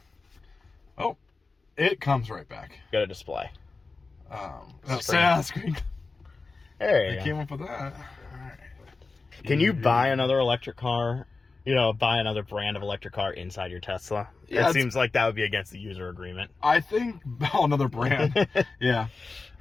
Oh, it comes right back. Got a display. Screen. There you They go. came up with that. All right. Can you buy another electric car? You know, buy another brand of electric car inside your Tesla? Yeah, it seems like that would be against the user agreement. I think another brand. Yeah.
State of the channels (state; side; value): quieter; right; 3.9 dB